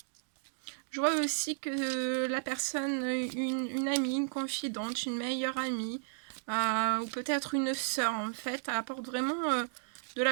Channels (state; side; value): silent; left; digital silence